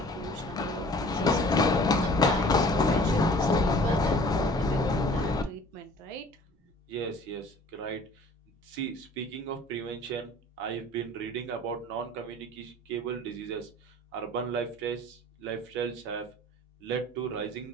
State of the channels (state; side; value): normal; both; correlation 0.49